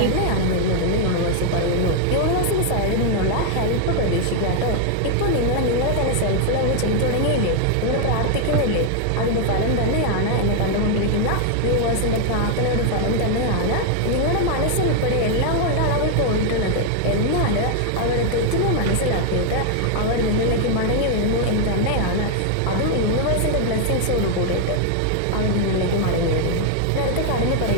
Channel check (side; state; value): both; different; correlation 0.00